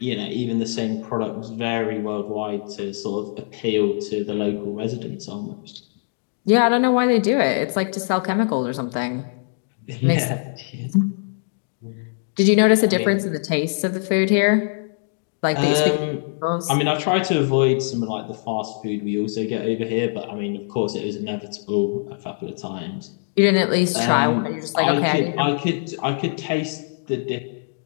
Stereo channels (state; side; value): silent; right; digital silence